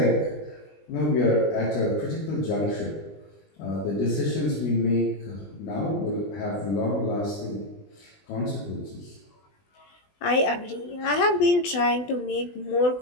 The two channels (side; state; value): right; late; 20 ms